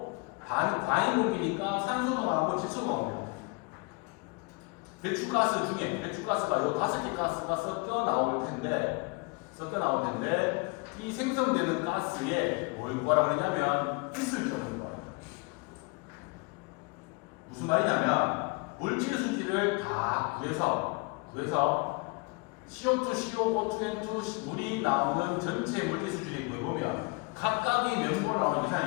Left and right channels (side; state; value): right; quieter; 30.1 dB